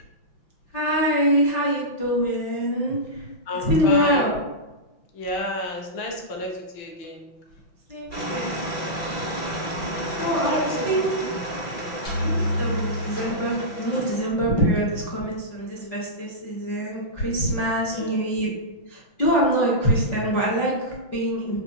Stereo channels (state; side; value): late; right; 5.9 ms